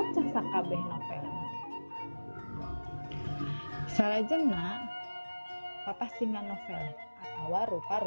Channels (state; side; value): inverted; both; correlation -1.00